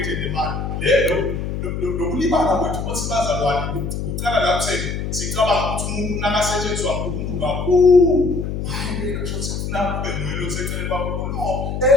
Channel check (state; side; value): noise; left; hum, 4 dB below the sound